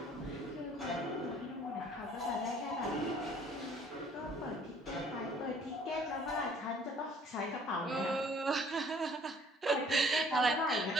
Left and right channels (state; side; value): normal; both; correlation 0.56